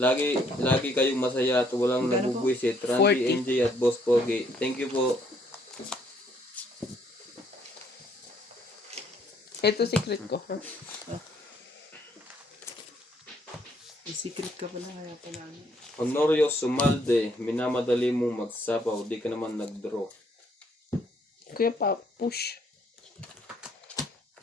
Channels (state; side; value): normal; both; correlation 0.68